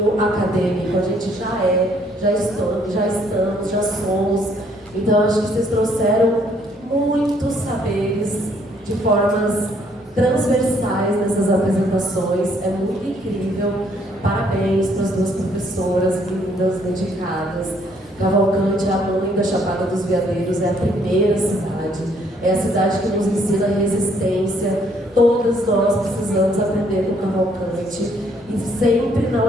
acadêmico. A gente já estamos, já somos. Então acho que vocês trouxeram muitos saberes de formas transversais nessas apresentações. É muito incrível. Parabéns para as duas professoras lindas, dedicadas. Cavalcante, a mãe da Chapada dos Veadeiros, é a primeira cidade. É a cidade que nos ensina resistência. Todas nós precisamos aprender com Cavalcante. E sempre na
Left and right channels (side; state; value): both; normal; correlation 0.66